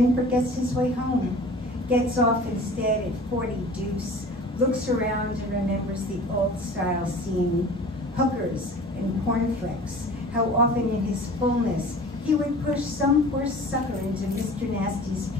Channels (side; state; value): both; normal; correlation 0.43